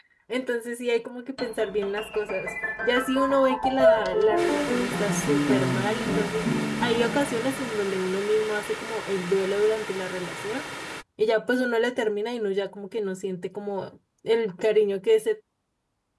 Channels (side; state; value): both; identical; correlation 1.00